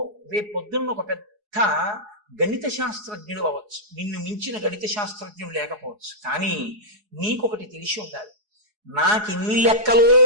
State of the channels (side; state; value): left; late; 4.8 ms